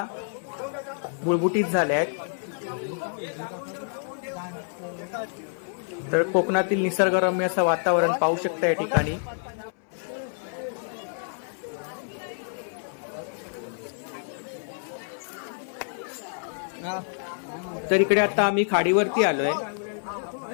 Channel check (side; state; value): right; silent; 59 dB below the other